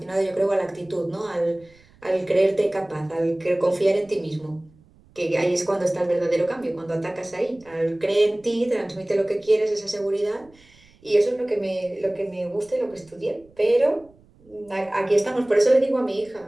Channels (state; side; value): noise; right; rumble, 29 dB below the sound